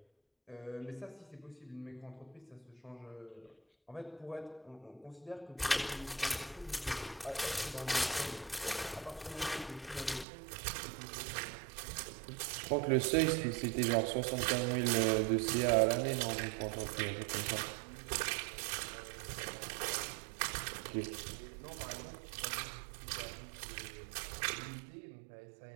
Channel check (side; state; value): left; drops out; at 10.2 s